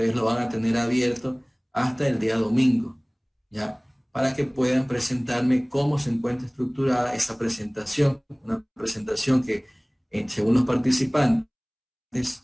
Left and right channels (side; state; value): both; identical; correlation 1.00